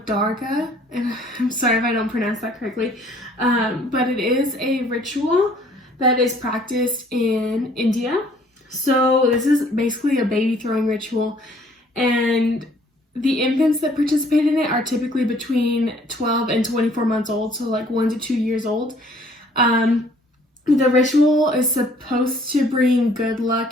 Darga, and I'm sorry if I don't pronounce that correctly, but it is a ritual that is practiced in India. So this is basically a baby throwing ritual, and the infants that participate in it are typically between 12 and 24 months old, so like 1 to 2 years old. The ritual is supposed to bring good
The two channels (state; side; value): normal; both; correlation 0.59